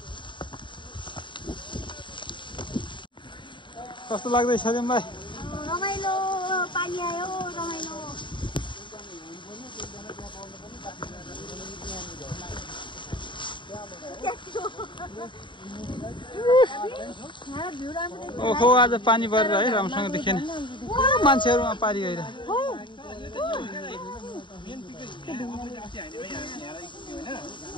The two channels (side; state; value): right; late; 0.23 ms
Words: कस्तो लाग्दैछ तिमीलाई रमाइलो पानी आयो रमाइलो ओहो आज पानी परेर है राम्रोसँग देखेन मान्छेहरूमा पारी गएर